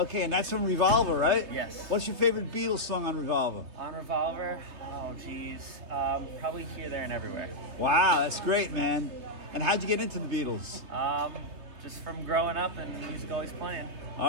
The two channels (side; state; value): left; late; 3.4 ms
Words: and that's from Revolver, right? Yes. What's your favorite Beatles song on Revolver? On Revolver, oh geez, probably Here, There, and Everywhere. Wow, that's great, man. And how'd you get into the Beatles? Just from growing up and music always playing.